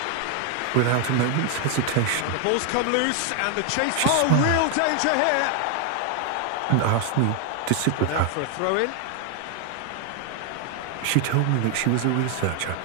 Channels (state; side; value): different; both; correlation 0.00